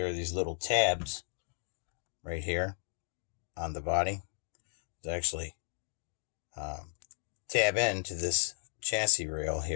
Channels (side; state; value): right; silent; 55 dB below the other